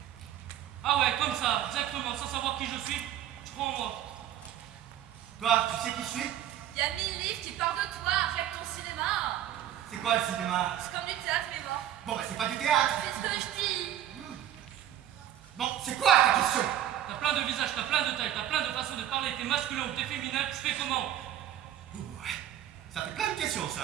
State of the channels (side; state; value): left; quieter; 11.5 dB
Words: Ah ouais, comme ça, exactement, sans savoir qui je suis, tu crois en moi. Toi, tu sais qui je suis? Il y a 1000 livres qui parlent de toi. Arrête ton cinéma. C'est quoi le cinéma? C'est comme du théâtre, mais bon. Bon, bah c'est pas du théâtre. C'est ce que je dis. Bon, c'est quoi ta question? T'as plein de visages, t'as plein de tailles, t'as plein de façons de parler, t'es masculin ou t'es féminin, tu fais comment? Ça fait plein de questions,